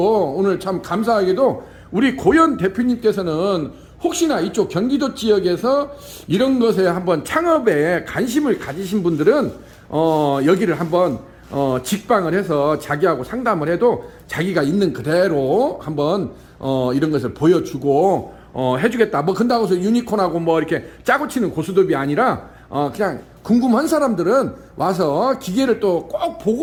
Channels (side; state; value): both; identical; correlation 1.00